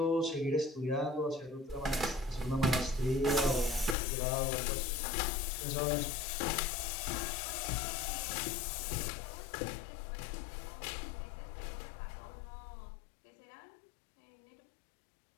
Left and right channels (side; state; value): right; drops out; at 4.0 s